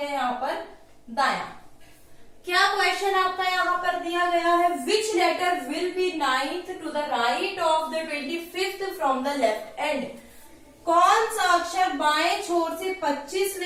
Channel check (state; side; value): identical; both; correlation 1.00